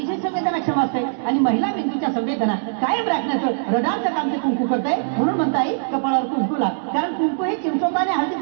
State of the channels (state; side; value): silent; left; digital silence